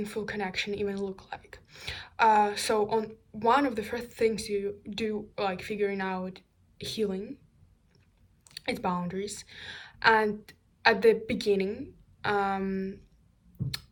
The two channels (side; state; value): both; identical; correlation 1.00